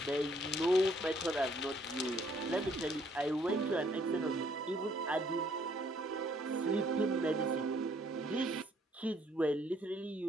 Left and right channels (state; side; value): normal; both; correlation 0.65